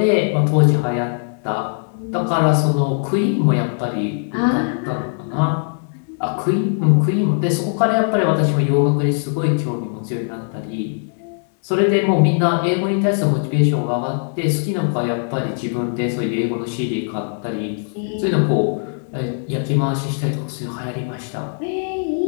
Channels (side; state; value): right; silent; digital silence